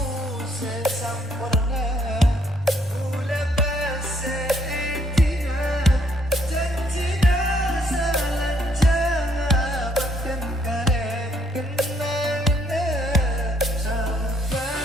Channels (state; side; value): normal; both; correlation 0.69